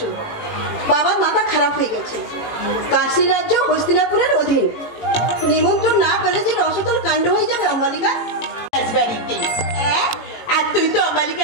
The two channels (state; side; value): late; right; 18 ms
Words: বাবার মাথা খারাপ হয়ে গেছে। কাশী রাজ্য হস্তিনাপুরের অধীন। নিমন্ত্রণ না পেলে যে রসতল কাণ্ড হয়ে যাবে অম্বালিকা। রাজবাড়িতে আর তুই তো